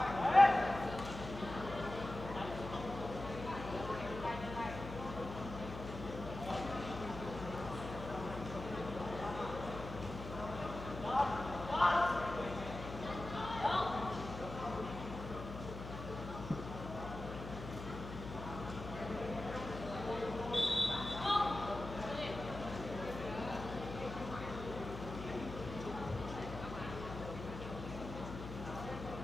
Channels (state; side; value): noise; left; hum, 9 dB below the sound